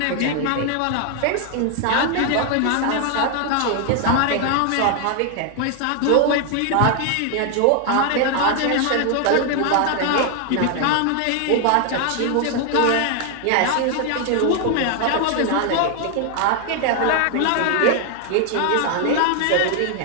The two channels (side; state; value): both; different; correlation 0.00